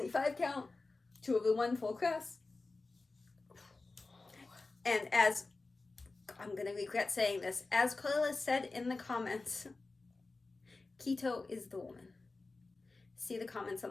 count, 2/1 full crest. And as, I'm going to regret saying this, as Karla said in the comments, Keto is the woman. See the comments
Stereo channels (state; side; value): quieter; right; 3.5 dB